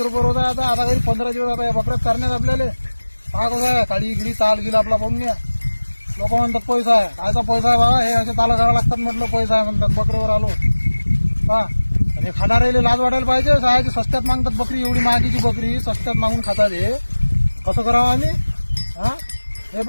रुपये रोज आहे. आता घरी 15 दिवस आता या बकऱ्यात करण्यात आपल्याला. पहा कसं आहे काळी गिडी ताल गिल आपला. पाहून घ्या. लोक म्हणतात पैसा आहे, कायचा पैसा आहे बाबा, हे असे ताला करावं लागतात म्हटलं, पैसा आहे म्हणतात. बकरीवर आलो पहा. आणि खाणारे लाज वाटायला पाहिजे. सहायची स्वस्त्यात मागतात बकरी, एवढी महागीची बकरी स्वस्त्यात मागून खातात. हे कसं करावं आम्ही? हा हे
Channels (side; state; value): both; inverted; correlation -1.00